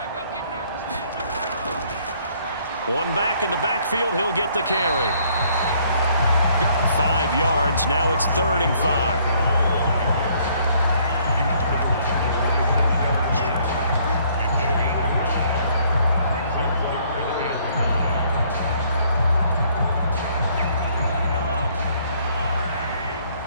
One back in the backfield, he'll get the carry. 5 yards, now it's 3rd and 5.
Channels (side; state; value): both; inverted; correlation -0.64